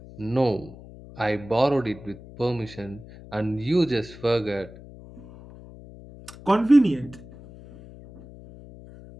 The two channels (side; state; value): left; noise; hum, 18 dB below the sound